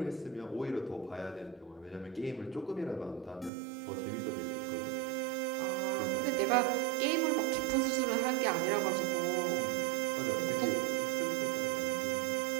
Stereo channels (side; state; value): left; drops out; at 3.5 s